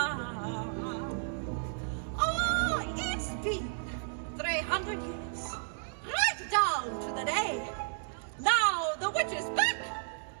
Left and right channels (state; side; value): silent; left; digital silence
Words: Oh, it's been 300 years, right down to the day. Now the witch is back,